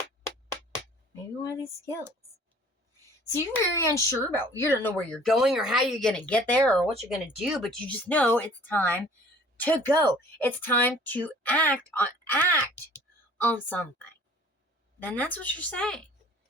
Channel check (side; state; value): both; normal; correlation 0.51